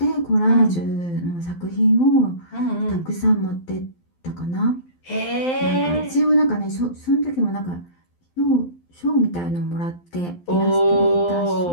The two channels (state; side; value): late; right; 12 ms